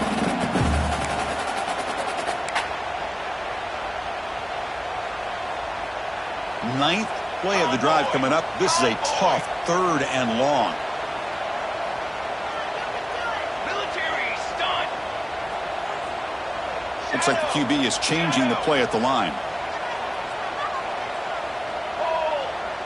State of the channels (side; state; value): both; identical; correlation 1.00